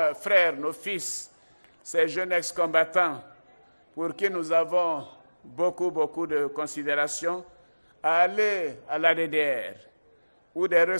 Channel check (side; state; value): both; inverted; correlation -1.00